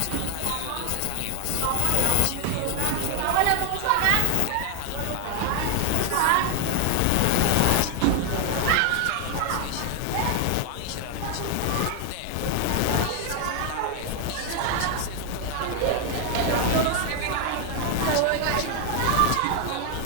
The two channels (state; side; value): different; both; correlation 0.00